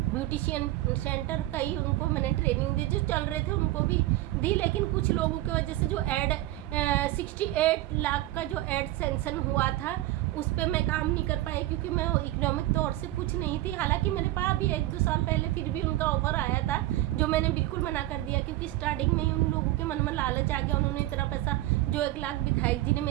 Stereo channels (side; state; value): left; quieter; 16.2 dB